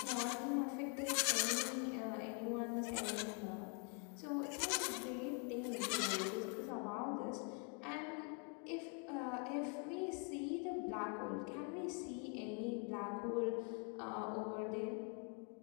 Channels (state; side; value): quieter; right; 36.8 dB